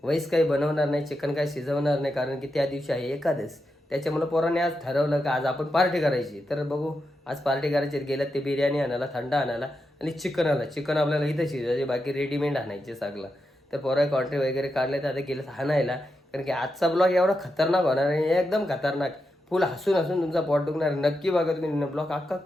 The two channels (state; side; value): normal; both; correlation 0.87